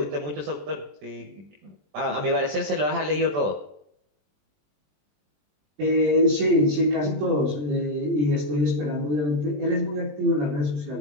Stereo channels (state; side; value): late; left; 20 ms